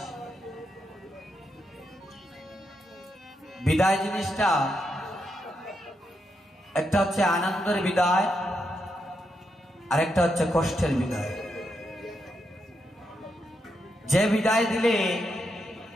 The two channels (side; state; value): both; normal; correlation 0.83